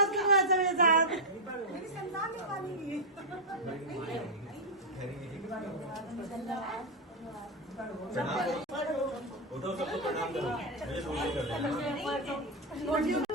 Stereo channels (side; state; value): both; normal; correlation -0.01